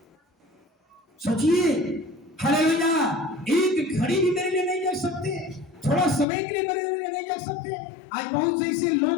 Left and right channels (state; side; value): drops out; right; at 6.2 s